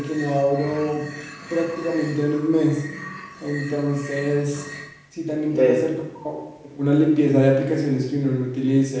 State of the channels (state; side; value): identical; both; correlation 1.00